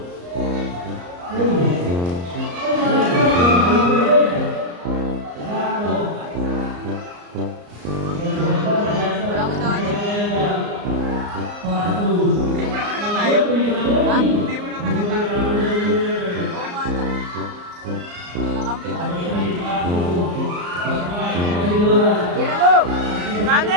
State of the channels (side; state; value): left; late; 34 ms